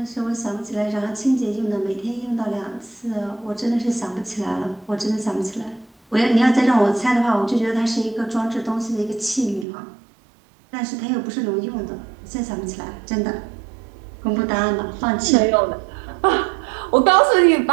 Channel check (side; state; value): left; drops out; at 9.7 s